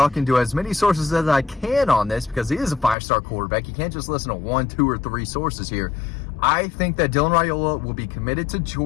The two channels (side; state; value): right; drops out; at 3.0 s